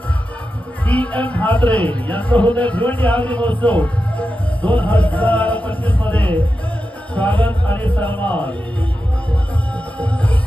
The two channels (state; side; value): normal; both; correlation 0.90